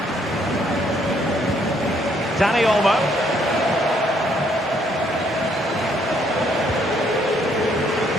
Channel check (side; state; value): both; normal; correlation 0.68